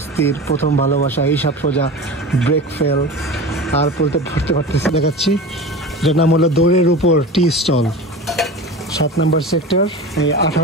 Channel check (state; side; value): normal; both; correlation 0.31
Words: প্রথম ভালোবাসা, এইসব সোজা, ব্রেক ফেল, আর পড়তে পারতেছি দেখাচ্ছি। যার নাম হলো দৌড়ের উপর টি স্টল, 7 নম্বর সেক্টর, এই